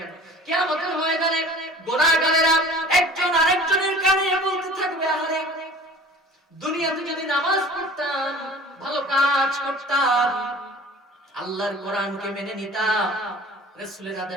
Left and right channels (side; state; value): both; normal; correlation 0.44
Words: কিয়ামতের ময়দানে গুনাহগারেরা একজন আরেকজনের কানে বলতে থাকবে, আরে দুনিয়াতে যদি নামাজ পড়তাম, ভালো কাজ করতাম, আল্লাহর কোরআনকে মেনে নিতাম, রাসূলের